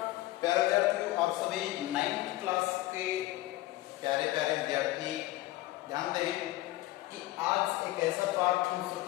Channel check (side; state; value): right; quieter; 17.3 dB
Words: प्यारे विद्यार्थियों, आप सभी 9th क्लास के प्यारे प्यारे विद्यार्थी ध्यान दें कि आज एक ऐसा पाठ हम शुरू